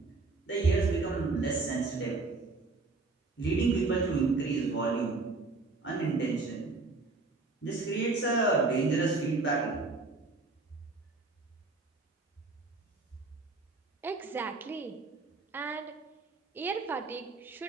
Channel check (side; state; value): left; quieter; 3.7 dB